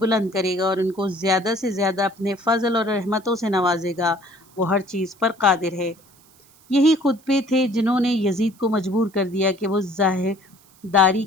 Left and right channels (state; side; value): noise; right; hiss, 29 dB below the sound